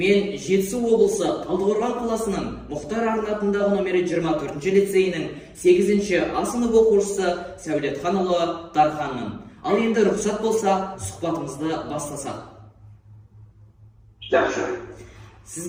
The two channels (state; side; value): identical; both; correlation 1.00